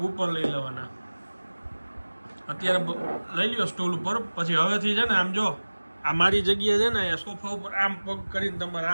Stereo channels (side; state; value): both; inverted; correlation -1.00